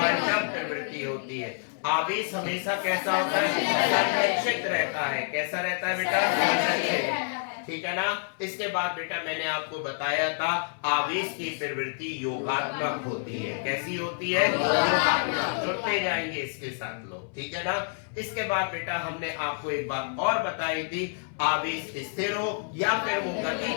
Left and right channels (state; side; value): silent; right; 59 dB below the other